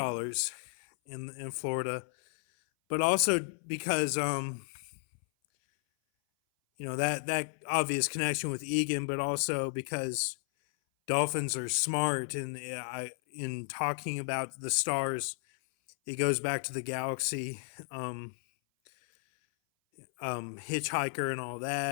in Florida, but also because that obvious connection with Egan, but also because dolphins are smart, and in talking about the stars, it goes back to the galaxy, Hitchhiker and all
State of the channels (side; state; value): right; silent; 56 dB below the other